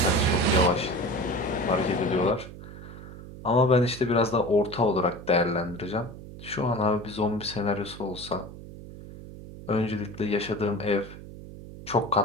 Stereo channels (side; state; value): right; noise; hum, 14 dB below the sound